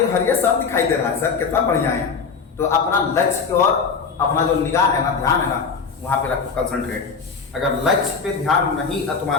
हरिया सब दिखाई दे रहा है सर, कितना बढ़िया है। तो अपना लक्ष्य और अपना जो निगाह है ना, ध्यान है ना, वहां पे रखो, कंसंट्रेट। अगर लक्ष्य पे ध्यान नहीं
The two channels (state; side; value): quieter; right; 5.4 dB